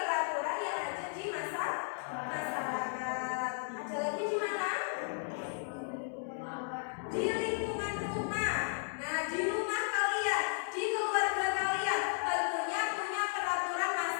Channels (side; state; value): right; silent; digital silence